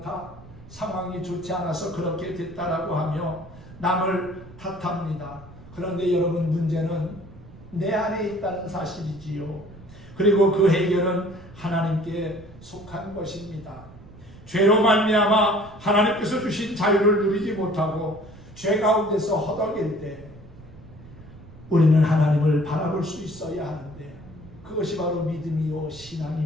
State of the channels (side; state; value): right; noise; rumble, 19 dB below the sound